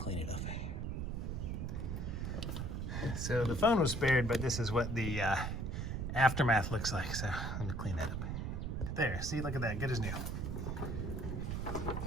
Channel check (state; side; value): noise; right; rumble, 2 dB below the sound